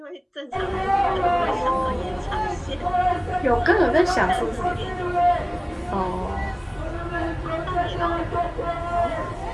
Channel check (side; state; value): both; identical; correlation 1.00